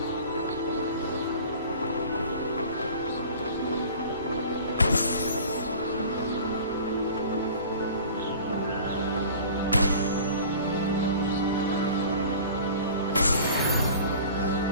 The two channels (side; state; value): both; inverted; correlation -0.43